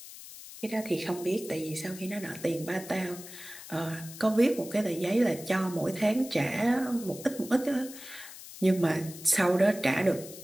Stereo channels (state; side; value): noise; left; hiss, 14 dB below the sound